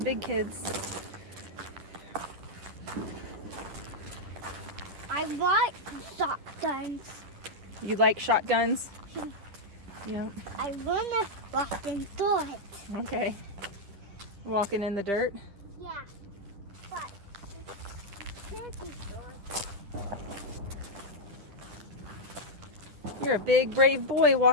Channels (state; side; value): late; left; 10 ms